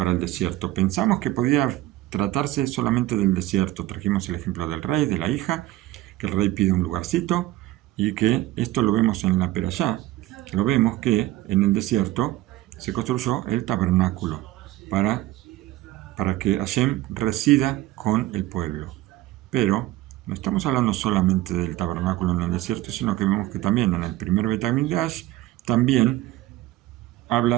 el desierto. Pensamos que podía tratarse solamente del desierto. Trajimos el ejemplo del rey, de la hija, que el rey pide un lugarcito, y que esto lo vemos en la Perashá. Lo vemos que en el desierto se construyó el tabernáculo para que Hashem resida con el pueblo. Pero no estamos hablando solamente del tabernáculo en el desierto, sino que vemos que también en el primer Bet HaMikdash también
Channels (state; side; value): quieter; left; 16.4 dB